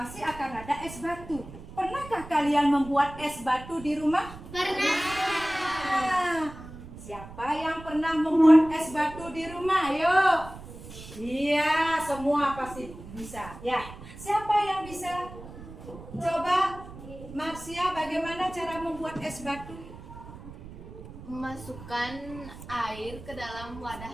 akan ada es batu. Pernahkah kalian membuat es batu di rumah? Pernah. Siapa yang pernah membuat es batu di rumah? Ayo. Iya, semua pasti bisa. Ya. Siapa yang bisa? Coba Marsia, bagaimana cara membuat es batu? Memasukkan air ke dalam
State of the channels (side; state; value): right; noise; rumble, 15 dB below the sound